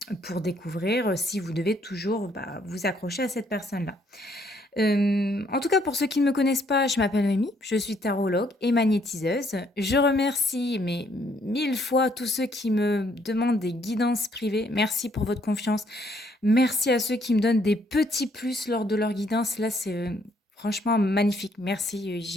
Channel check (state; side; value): normal; both; correlation 0.68